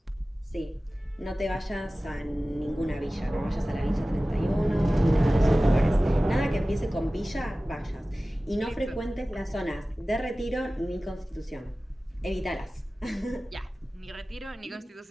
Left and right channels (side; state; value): both; normal; correlation 0.97